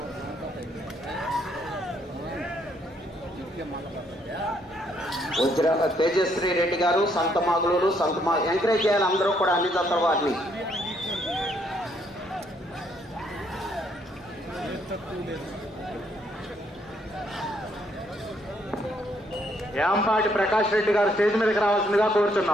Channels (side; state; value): both; normal; correlation 0.70